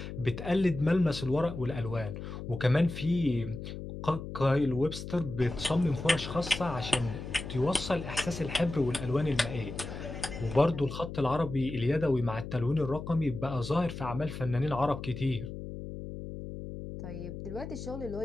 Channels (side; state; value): left; noise; hum, 9 dB below the sound